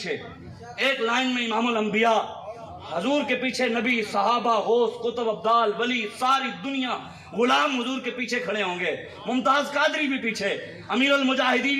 ایک لائن میں امام الانبیاء حضور کے پیچھے نبی صحابہ غوث قطب ابدال ولی ساری دنیا غلام حضور کے پیچھے کھڑے ہوں گے. ممتاز قادری بھی پیچھے, امیر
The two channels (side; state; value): both; identical; correlation 1.00